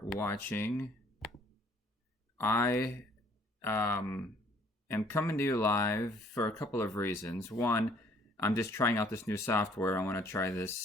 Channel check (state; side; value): normal; both; correlation 0.60